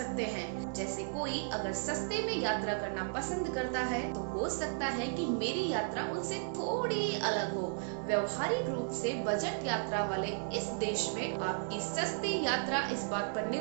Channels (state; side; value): silent; left; digital silence